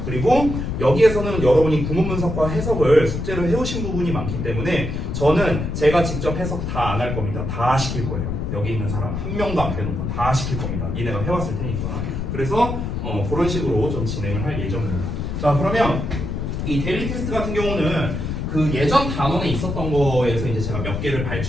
그리고 여기에서는 여러분이 구문 분석과 해석을 숙제로 해오신 부분이 많기 때문에 저는 제가 직접 해석 다 안 할 겁니다. 다 시킬 거예요. 여기 있는 사람 한 명도 안 빼놓고 다 시킬 겁니다. 니네가 해왔을 테니까. 그래서 그런 식으로 좀 진행을 할 예정입니다. 자, 그러면 이 데일리 테스트 같은 경우는 그 예전 단원에 있었던 거에서 이제 제가 몇 개를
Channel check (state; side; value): noise; left; rumble, 3 dB below the sound